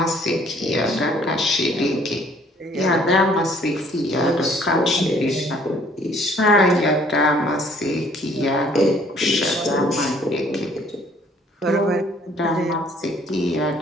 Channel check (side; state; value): both; normal; correlation 0.59